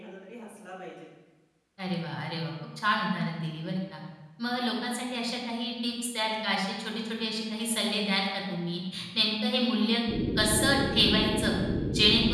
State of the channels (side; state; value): both; identical; correlation 1.00